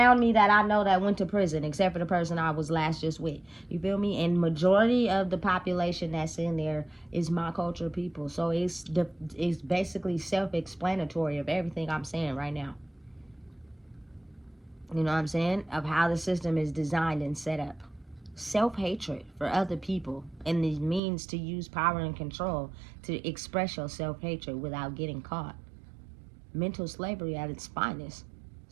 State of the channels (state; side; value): drops out; left; at 21.0 s